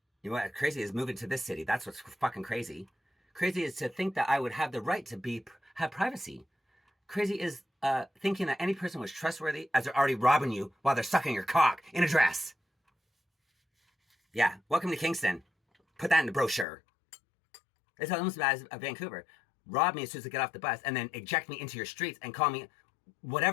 You know what? Crazy is moving to this city. That's what's fucking crazy. Crazy is to think that I would have the right to have privacy. Crazy is thinking that any person was trustworthy as they're already robbing you while they're sucking your cock in a dress. Yeah, welcome to Kingston. Put that in the brochure. It's almost as bad as Vancouver. Rob me as soon as I get off the bus and then eject me into your streets and call me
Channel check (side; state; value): right; drops out; at 16.7 s